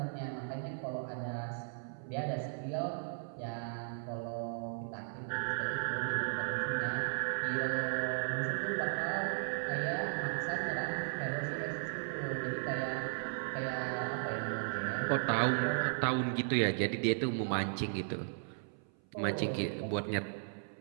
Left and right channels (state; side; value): silent; left; 54 dB below the other